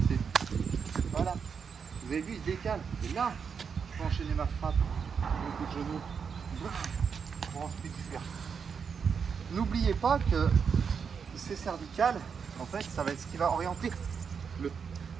c'est voilà. Vous avez vu, il se décale. Et là, je peux enchaîner ma frappe, le coup de genou, pour ensuite fuir. N'oubliez pas que ces cervicales, en fait, ça va être ce qui va orienter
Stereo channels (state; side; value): quieter; left; 6.3 dB